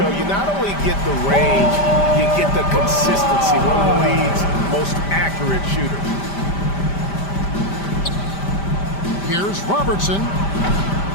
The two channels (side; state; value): right; late; 5.1 ms